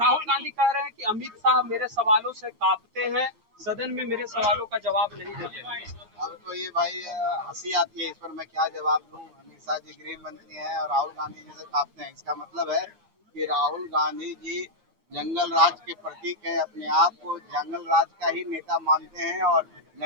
गांधी कह रहे हैं कि अमित शाह मेरे सवालों से कांपते हैं, सदन में मेरे सवालों का जवाब नहीं देते। अब तो ये भाई हंसी आती है, इस पर मैं क्या जवाब दूं। अमित शाह जी गृह मंत्री हैं और राहुल गांधी जी से कांपते हैं, इसका मतलब है कि राहुल गांधी जी जंगल राज के प्रतीक हैं, अपने आप को जंगल राज का ही नेता मानते हैं। और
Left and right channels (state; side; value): late; left; 8.7 ms